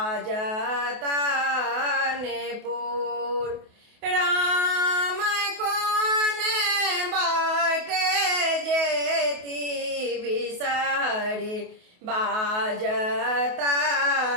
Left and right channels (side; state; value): left; late; 28 ms